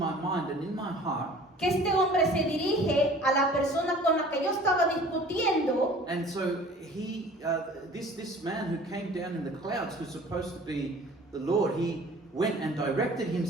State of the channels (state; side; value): normal; both; correlation 0.47